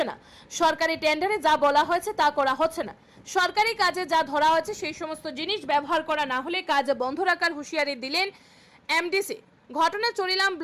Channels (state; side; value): identical; both; correlation 1.00